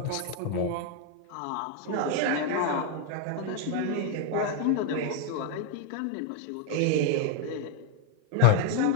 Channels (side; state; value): both; different; correlation 0.00